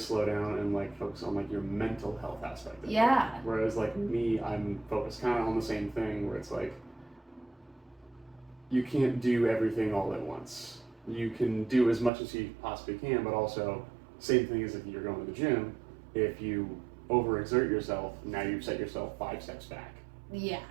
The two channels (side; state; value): left; drops out; at 12.1 s